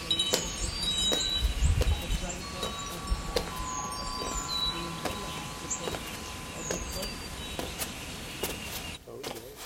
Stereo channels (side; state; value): both; identical; correlation 1.00